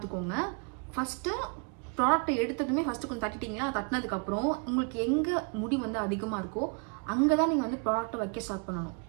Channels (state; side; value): quieter; left; 35.7 dB